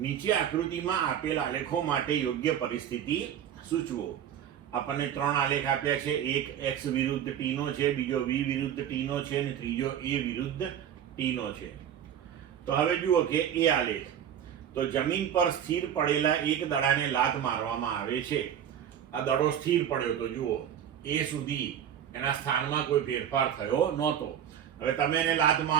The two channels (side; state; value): left; quieter; 9.6 dB